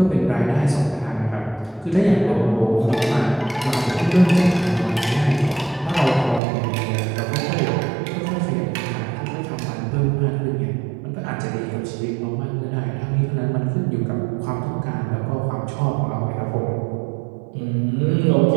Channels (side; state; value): left; drops out; at 6.4 s